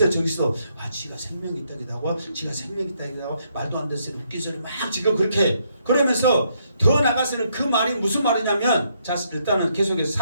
저기서 지가 생명이 있다기도 지가 생명이 있다기도 말도 안 되는 웃긴 소리 막 지금 그렇게 그러면서 더 나가서는 그 말이 무슨 말이냐면 자 일단은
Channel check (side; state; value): both; inverted; correlation -0.74